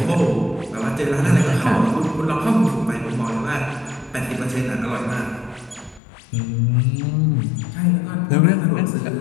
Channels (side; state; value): right; drops out; at 6.0 s